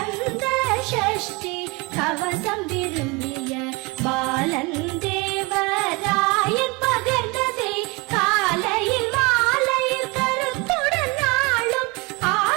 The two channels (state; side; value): quieter; left; 26.9 dB